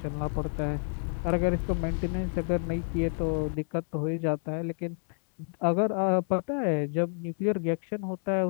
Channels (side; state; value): right; silent; digital silence